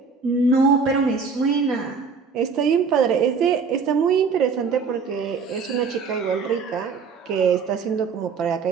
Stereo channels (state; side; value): quieter; left; 5.3 dB